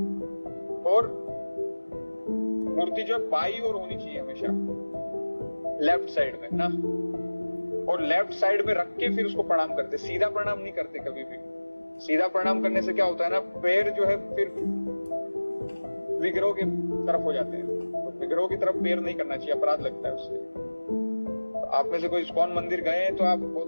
और मूर्ति जो है बाई ओर होनी चाहिए हमेशा, लेफ्ट साइड में ना, और लेफ्ट साइड में रख के फिर उसको प्रणाम करते। सीधा प्रणाम नहीं करते कभी भी। सीधा प्रणाम करने से क्या होता है ना, पैर जो है फिर विग्रह की तरफ हो जाते हैं। तो विग्रह की तरफ पैर नहीं करना चाहिए, अपराध लगता है उससे। तो आप में से कोई इस्कॉन मंदिर गए हैं तो आप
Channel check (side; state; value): both; inverted; correlation -1.00